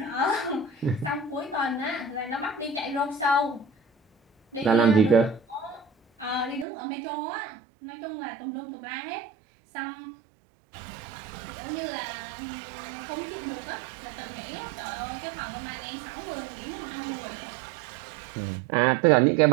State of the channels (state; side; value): drops out; left; at 6.7 s